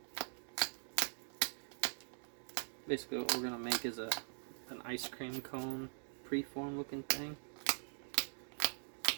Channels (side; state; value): left; silent; digital silence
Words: Basically what we're going to make is an ice cream cone preform looking thing.